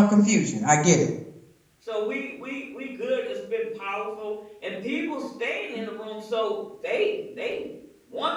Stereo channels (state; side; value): identical; both; correlation 1.00